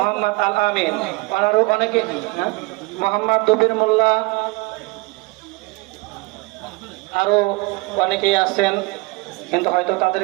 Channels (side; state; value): left; quieter; 25.6 dB